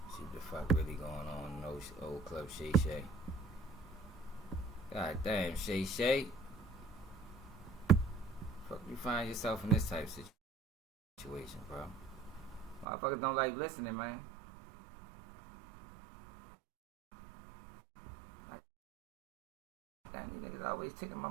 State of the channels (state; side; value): drops out; left; at 12.9 s